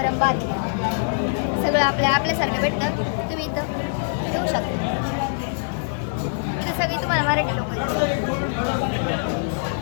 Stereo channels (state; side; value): silent; right; digital silence